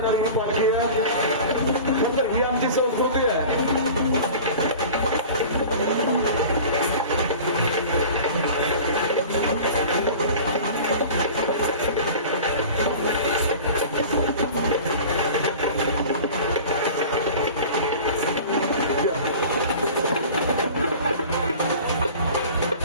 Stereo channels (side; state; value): both; inverted; correlation -0.39